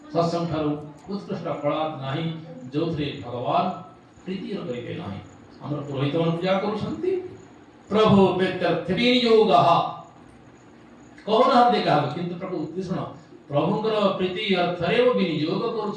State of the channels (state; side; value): identical; both; correlation 1.00